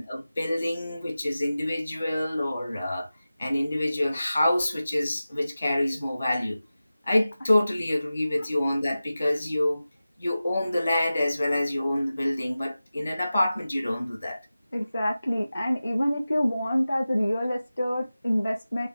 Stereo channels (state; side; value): inverted; both; correlation -0.95